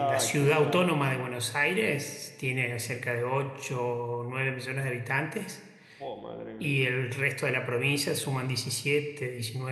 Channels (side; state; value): both; identical; correlation 1.00